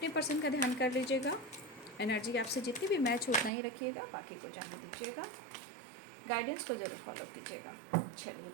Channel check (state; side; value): drops out; left; at 3.5 s